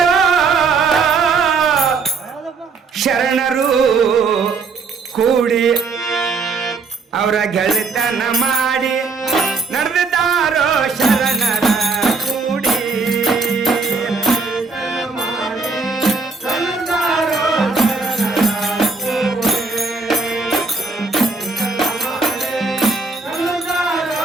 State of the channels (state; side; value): quieter; left; 4.5 dB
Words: ಶರಣರು ಕೂಡಿ ಅವರ ಗೆಳೆತನ ಮಾಡಿ ನಡೆದಾರೋ ಶರಣರ ಕೂಡಿ